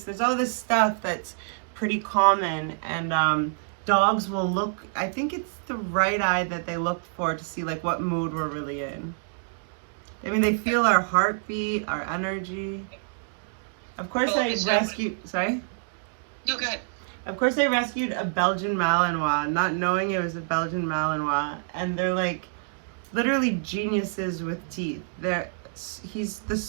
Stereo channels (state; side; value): silent; left; digital silence